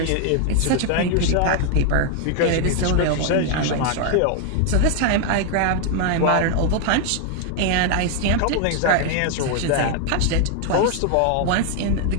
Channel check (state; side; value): different; both; correlation 0.00